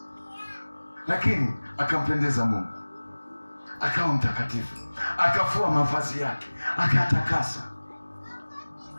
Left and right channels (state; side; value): inverted; both; correlation -1.00